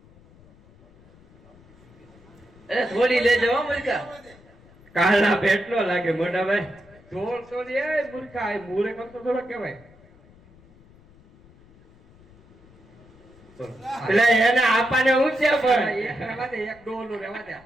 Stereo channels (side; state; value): left; noise; rumble, 26 dB below the sound